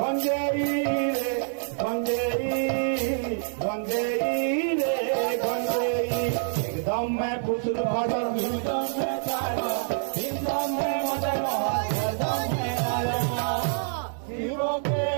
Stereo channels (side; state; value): left; silent; 61 dB below the other